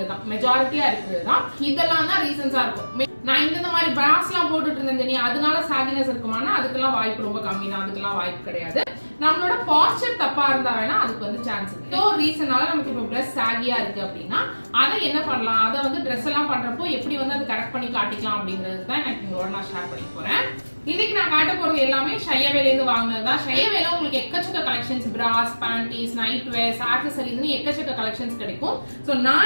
தான் மெஜாரிட்டியா இருக்கிறது தான். இதெல்லாம் தான் ரீசன்ஸா இருக்கும். நான் இந்த மாதிரி பிராஸ் எல்லாம் போட்டுட்டு இருந்தேன் அதனால சாகினஸ் இருக்குமானா அதுக்கெல்லாம் வாய்ப்பு ரொம்ப கம்மி தான். அதுக்கெல்லாம் வாய்ப்பு கிடையாது. நம்மளோட பாஸ்டர் தப்பா இருந்தா வேணா அதுக்கு வந்து சான்ஸ் இருக்கு. ஏதோ ஒரு ரீசனால நமக்கு இப்போ ட்ரெஸ் சாகியா இருக்கு அப்படின்னா அதை என்ன பண்ணலாம் அதை வந்து ட்ரெஸ் எல்லாம் பண்றப்போ எப்படி வந்து அதை கரெக்ட் பண்ணி காட்டிக்கலாம் அப்படிங்கிறது தான் எனக்கு உங்களோட நான் ஷேர் பண்ணி போறேன். இன்னைக்கு நான் காட்ட போறது எல்லாமே ஷையவேல இருந்து வாங்கினது தான். ஷையவேல உங்களுக்கு எக்கச்சக்க கலெக்ஷன்ஸ் பிராஸ் பேண்டீஸ் நைட் வேர்ஸ் ஆக்சசரிஸ் எக்கச்சக்க கலெக்ஷன்ஸ் கிடைக்கும். சோ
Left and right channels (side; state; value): both; inverted; correlation -1.00